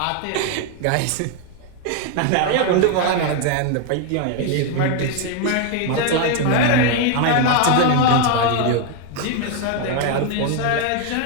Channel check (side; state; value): both; different; correlation 0.01